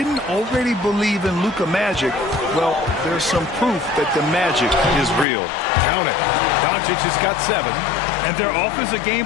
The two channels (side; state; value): right; drops out; at 5.2 s